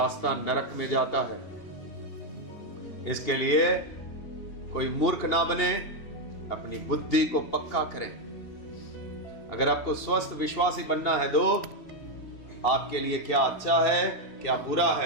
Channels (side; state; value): right; late; 2.7 ms